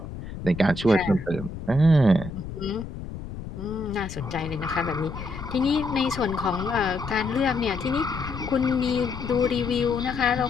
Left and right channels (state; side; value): noise; left; rumble, 10 dB below the sound